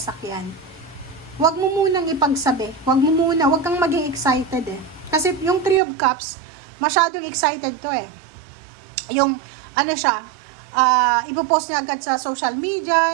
huwag mo munang ipagsabi. Huwag kang maging excited eh. Kasi yung Three of Cups, masyadong excited to eh. Yung, ipopost niya agad sa social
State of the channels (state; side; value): drops out; left; at 5.8 s